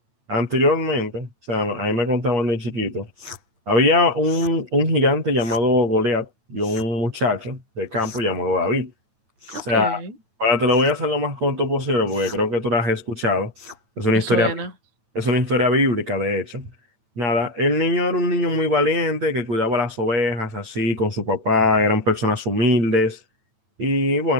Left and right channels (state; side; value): late; left; 9.0 ms